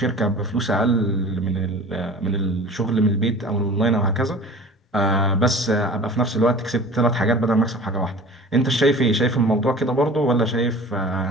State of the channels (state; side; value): normal; both; correlation 0.41